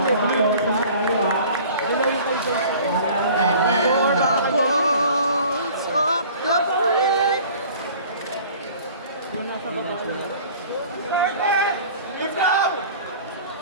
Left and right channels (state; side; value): inverted; both; correlation -0.46